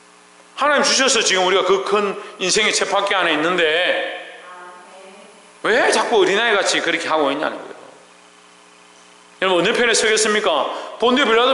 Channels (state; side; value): identical; both; correlation 1.00